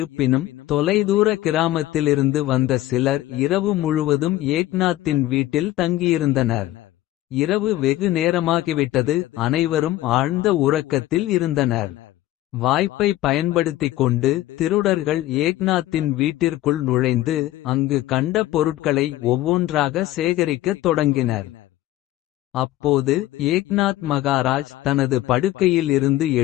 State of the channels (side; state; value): right; quieter; 15.4 dB